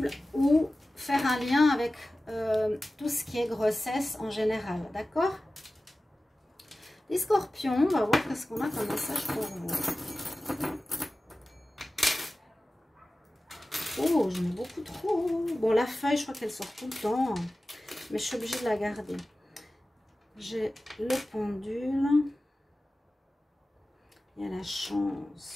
ou faire un lien avec tout ce qui est grossesse en général. D'accord? Les scorpions, on va voir qu'est-ce qu'on a comme message pour vous. Oh, j'en ai beaucoup trop. Bon, la feuille, je crois qu'elle sort tout le temps. Mais je suis obligée de la garder. J'ai le pendule. Il y a la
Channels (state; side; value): normal; both; correlation 0.96